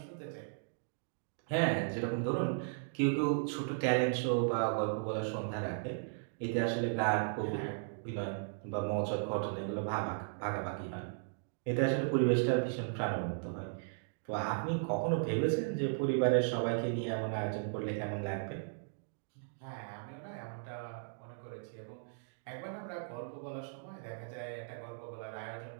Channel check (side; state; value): left; silent; digital silence